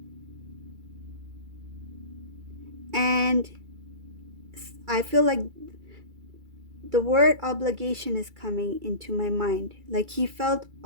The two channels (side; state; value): left; late; 2.3 ms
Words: And I feel like the word obligation is coming into my mind. Like he felt